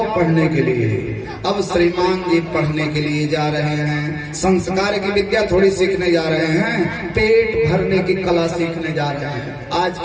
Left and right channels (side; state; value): both; identical; correlation 1.00